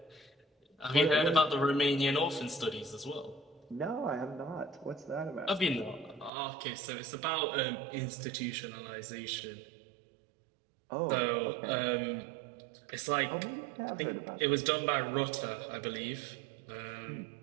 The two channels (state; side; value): drops out; left; at 6.3 s